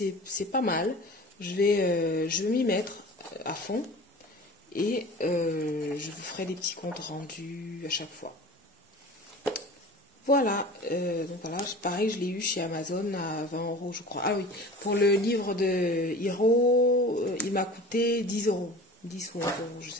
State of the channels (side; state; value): both; normal; correlation 0.39